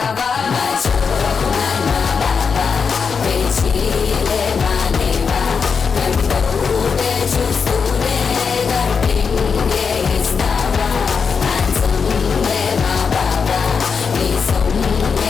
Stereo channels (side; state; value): right; quieter; 5.8 dB